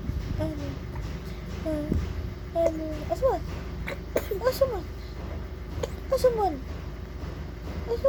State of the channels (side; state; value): both; identical; correlation 1.00